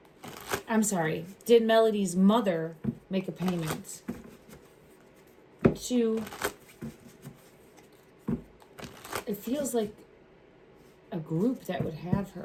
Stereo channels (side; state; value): both; identical; correlation 1.00